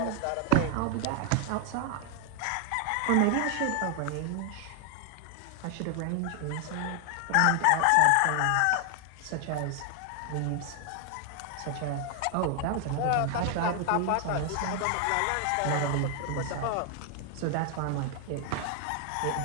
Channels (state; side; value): different; both; correlation 0.00